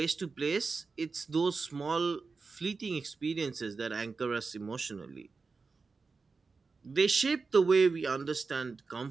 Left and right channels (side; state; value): left; quieter; 4.4 dB